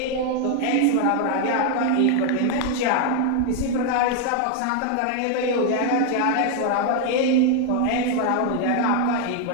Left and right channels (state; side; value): different; both; correlation 0.00